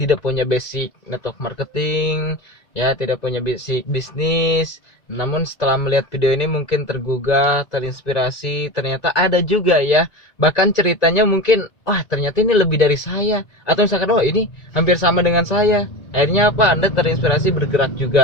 punya basic network marketing, ya tidak punya basic bisnis. Namun setelah melihat video ini mungkin tergugah, terinspirasi. Ternyata ada juga ya, bahkan ceritanya mungkin wah ternyata ini lebih dari saya, atau misalkan wah ini hampir sama dengan saya. Akhirnya apa, Anda terinspirasi bergerak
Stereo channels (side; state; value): right; late; 1.9 ms